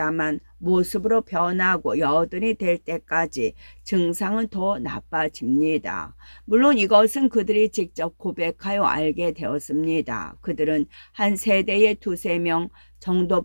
모습으로 변하고 80이 될 때까지 증상은 더 나빠집니다. 물론 이것은 그들이 직접 고백하여 알게 되었습니다. 그들은 한 세대에 2~3명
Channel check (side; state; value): both; inverted; correlation -1.00